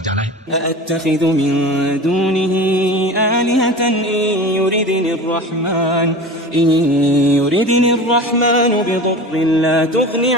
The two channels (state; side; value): normal; both; correlation 0.34